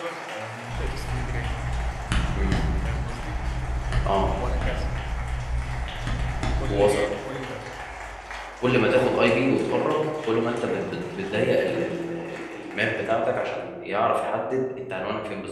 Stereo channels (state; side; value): identical; both; correlation 1.00